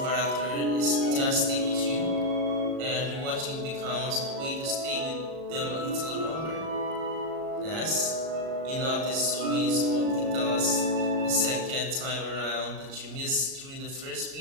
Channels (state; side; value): late; left; 37 ms